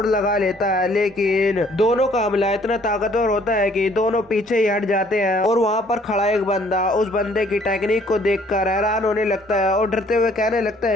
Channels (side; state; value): both; normal; correlation 0.60